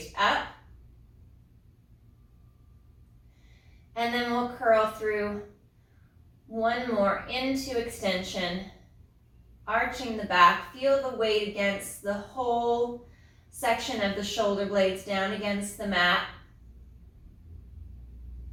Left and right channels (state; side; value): identical; both; correlation 1.00